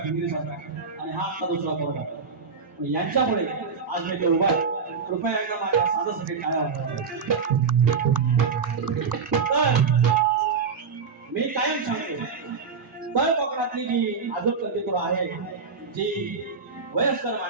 भिंगरी सारखा आणि हा आता दुसरा पोरगा. यांच्यामुळे आज मी ते उभा. कृपया एकदा माझ्या साधासाठी काय तर मी कायम सांगतो, तळ कोकणातली जी आजूक कल्पितुर आहे, जी वयस्कर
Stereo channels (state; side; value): quieter; left; 5.3 dB